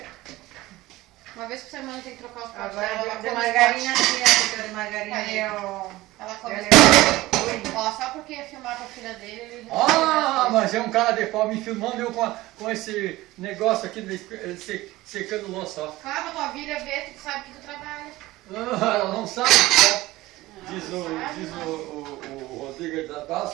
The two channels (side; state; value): left; quieter; 18.2 dB